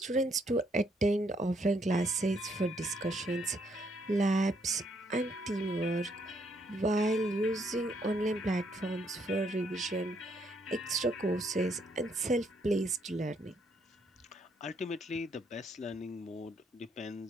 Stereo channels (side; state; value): both; normal; correlation 0.72